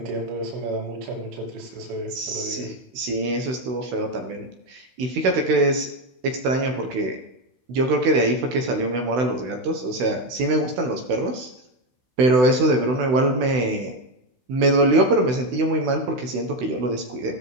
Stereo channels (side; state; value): left; late; 16 ms